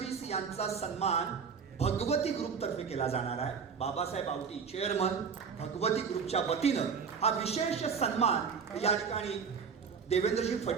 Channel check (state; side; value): quieter; left; 6.1 dB